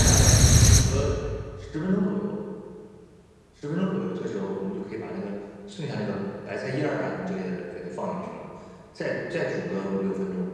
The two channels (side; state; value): both; identical; correlation 1.00